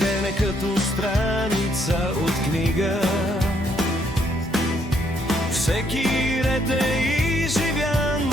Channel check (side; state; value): both; normal; correlation 0.71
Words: е като страница от книга. Всеки ред е изживян